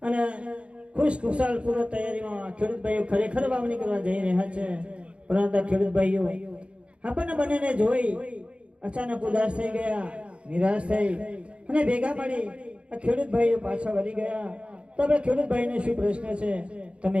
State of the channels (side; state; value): left; late; 0.059 ms